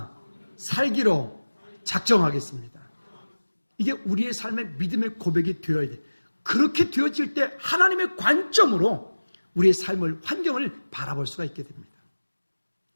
살기로 작정하겠습니다. 이게 우리의 삶의 믿음의 고백이 되어야 돼. 그렇게 되어질 때 하나님의 관점으로 우리의 삶을, 환경을 바라볼 수가 있게 됩니다.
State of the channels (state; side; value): inverted; both; correlation -1.00